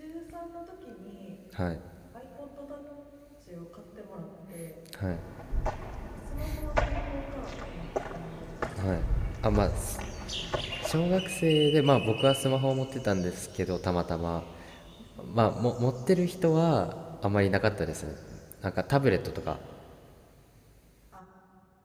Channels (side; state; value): both; identical; correlation 1.00